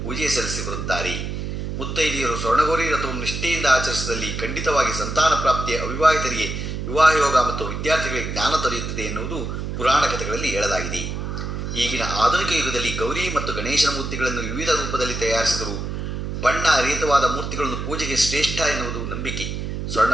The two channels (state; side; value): noise; right; hum, 4 dB below the sound